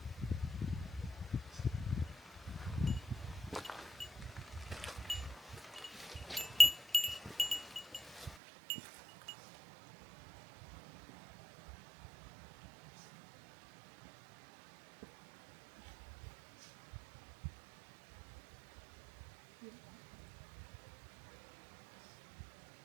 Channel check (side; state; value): left; drops out; at 8.3 s